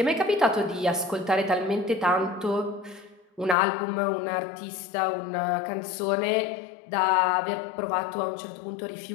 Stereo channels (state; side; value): drops out; right; at 3.6 s